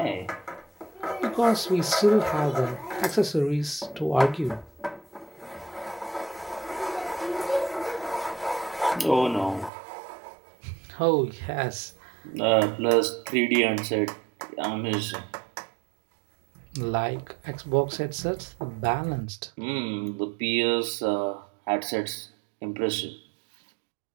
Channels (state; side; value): drops out; left; at 9.7 s